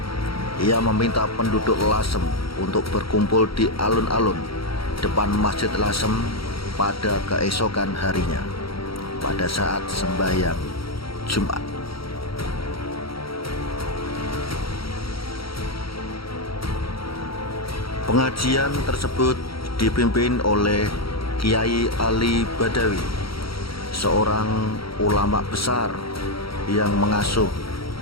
Ia meminta penduduk Lasem untuk berkumpul di alun-alun depan Masjid Lasem pada keesokan harinya pada saat sembahyang Jumat. Pengajian tersebut dipimpin oleh Kiai Ali Badawi, seorang ulama besar yang mengasuh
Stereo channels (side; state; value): right; late; 0.75 ms